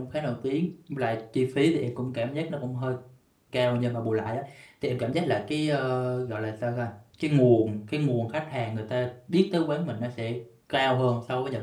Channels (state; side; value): identical; both; correlation 1.00